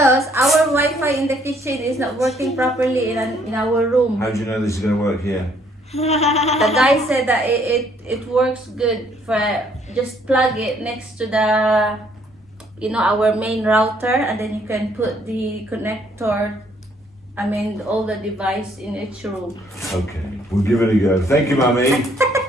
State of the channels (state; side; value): normal; both; correlation 0.66